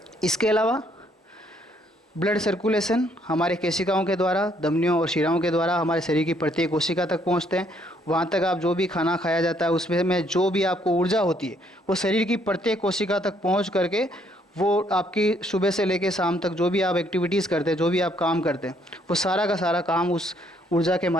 इसके अलावा ब्लड सर्कुलेशन हमारे केशिकाओं के द्वारा, धमनियों और शिराओं के द्वारा हमारे शरीर की प्रत्येक कोशिका तक पहुंचते हैं। वहाँ तक आप जो भी खाना खाया जाता है उसमें जो भी आपको ऊर्जा होती है वो शरीर की प्रत्येक कोशिका तक पहुंच करके वो आपकी सुबह से लेकर शाम तक जो भी आप एक्टिविटीज़ करते हैं, जो भी आप काम करते हैं, वो सारा का सारा काम उस ऊर्जा के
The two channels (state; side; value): normal; both; correlation 0.68